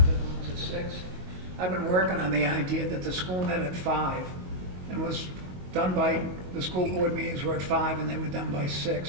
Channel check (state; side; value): late; left; 22 ms